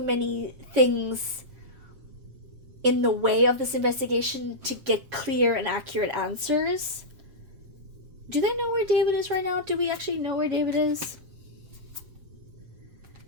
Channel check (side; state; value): left; late; 7.3 ms